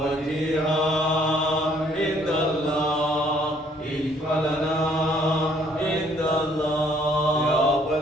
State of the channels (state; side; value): normal; both; correlation 0.63